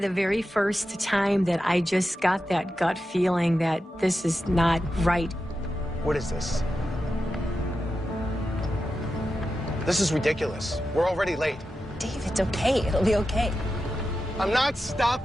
very first time that I just got that gut feeling that this is not right. What is this? This is ridiculous. We're already late. Dave, it's okay. It'll be okay. I'm not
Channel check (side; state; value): both; normal; correlation 0.90